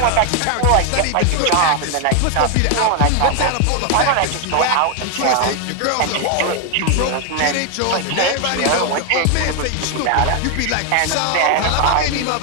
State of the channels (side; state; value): both; different; correlation 0.00